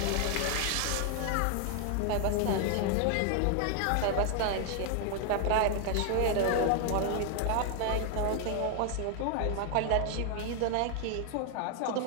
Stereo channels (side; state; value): both; different; correlation 0.00